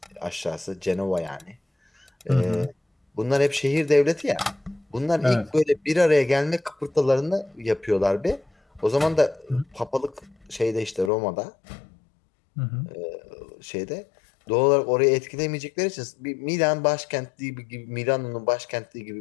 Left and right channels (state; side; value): drops out; right; at 11.1 s